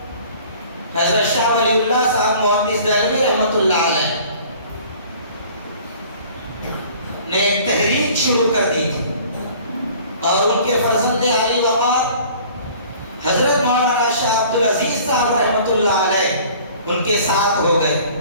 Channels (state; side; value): inverted; both; correlation -0.49